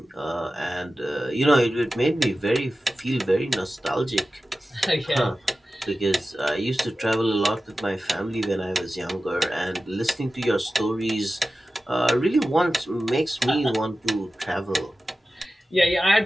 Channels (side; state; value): both; normal; correlation 0.95